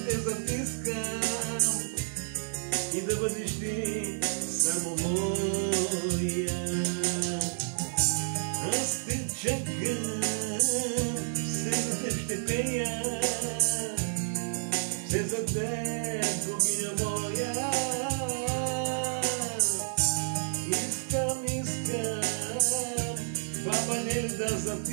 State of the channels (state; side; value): silent; left; digital silence